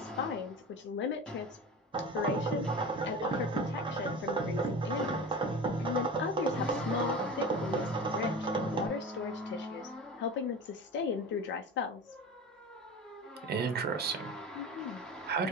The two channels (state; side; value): normal; both; correlation 0.32